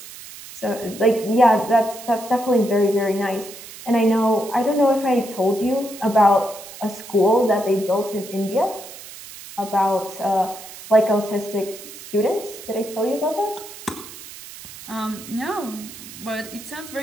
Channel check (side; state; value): right; noise; hiss, 15 dB below the sound